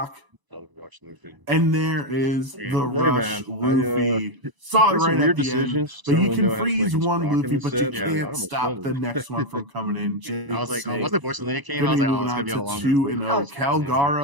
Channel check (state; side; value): late; left; 1.0 ms